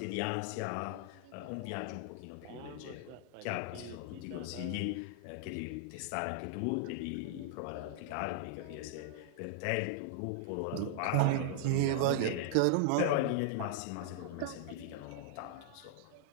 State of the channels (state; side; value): different; both; correlation -0.01